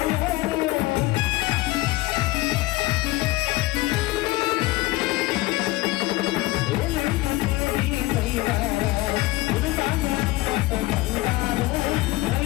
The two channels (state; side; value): quieter; right; 19.3 dB